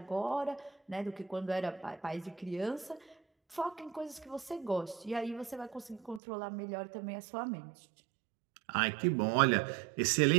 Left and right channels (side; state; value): left; drops out; at 6.2 s